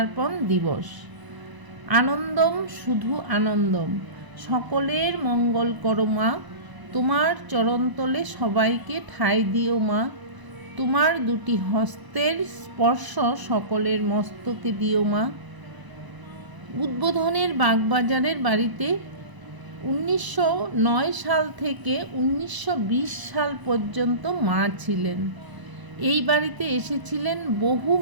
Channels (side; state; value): left; late; 1.0 ms